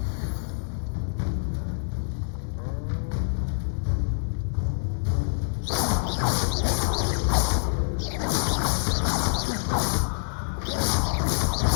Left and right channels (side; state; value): right; silent; digital silence